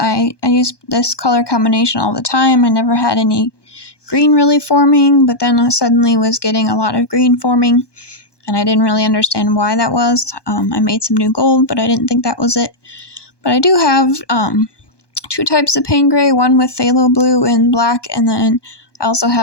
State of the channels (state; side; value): late; right; 1.2 ms